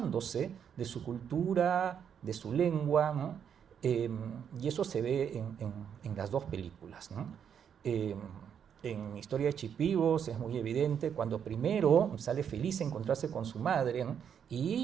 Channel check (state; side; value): quieter; left; 8.0 dB